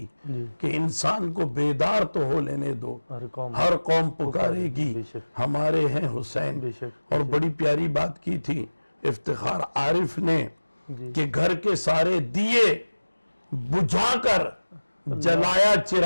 کہ انسان کو بیدار تو ہو لینے دو، ہر قوم پکارے گی ہمارے ہیں حسین. اور بڑی پیاری بات کی تھی افتخار عارف نے کہ گھر کے سارے دیے بجھا کر جلایا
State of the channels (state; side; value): inverted; both; correlation -1.00